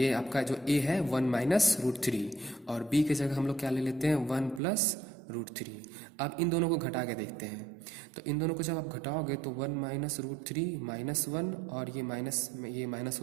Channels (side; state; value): left; drops out; at 4.6 s